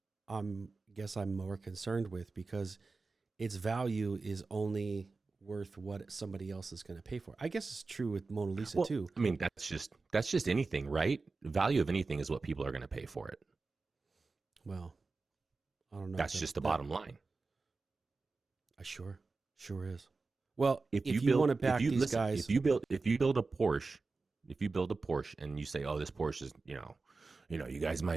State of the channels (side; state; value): left; quieter; 4.0 dB